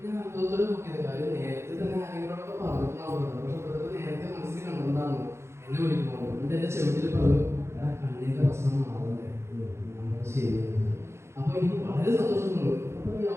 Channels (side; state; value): left; late; 0.13 ms